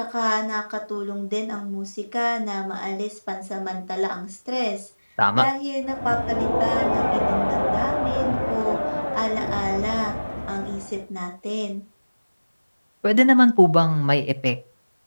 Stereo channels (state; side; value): inverted; both; correlation -1.00